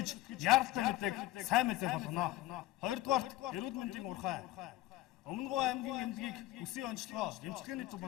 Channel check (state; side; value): quieter; right; 16.4 dB